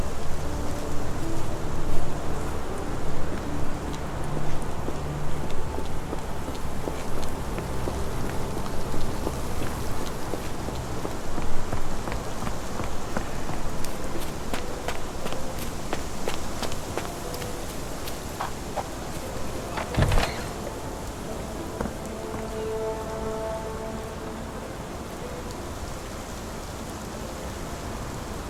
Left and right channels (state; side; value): identical; both; correlation 1.00